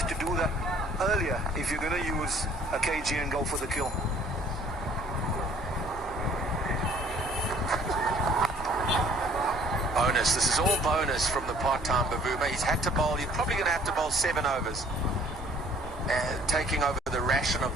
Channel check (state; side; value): normal; both; correlation 0.56